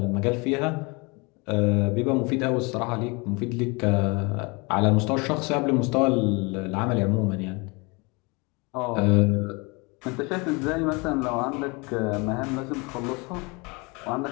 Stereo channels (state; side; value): quieter; right; 28.3 dB